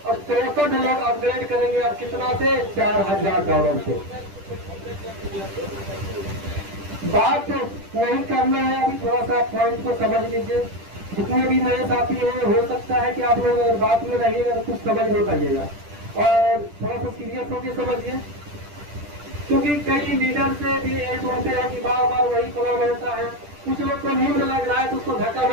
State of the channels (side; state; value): left; late; 10 ms